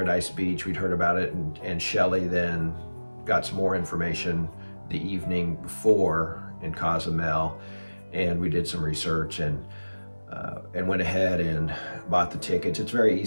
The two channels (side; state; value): both; inverted; correlation -1.00